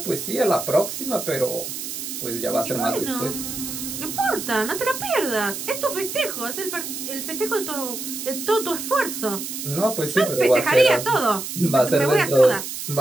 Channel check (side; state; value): right; noise; hiss, 6 dB below the sound